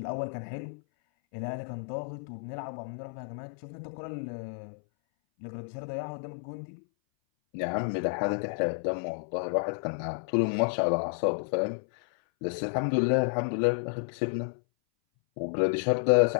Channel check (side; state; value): right; silent; 57 dB below the other